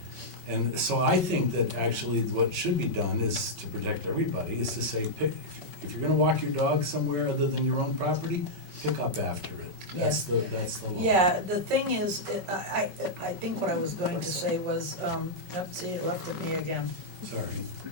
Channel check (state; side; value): late; left; 5.3 ms